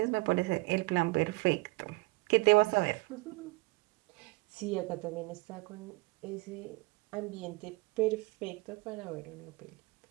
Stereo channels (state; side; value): quieter; left; 23.1 dB